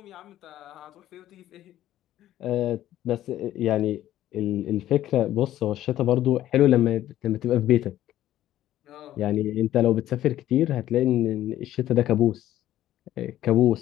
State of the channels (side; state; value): right; quieter; 13.1 dB